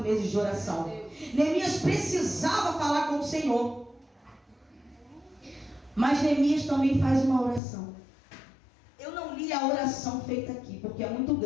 de oração. Neemias precisava falar com o Senhor. Mas Neemias também faz uma oração. Eu não li a oração feita aqui, porque é muito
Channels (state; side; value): drops out; right; at 7.6 s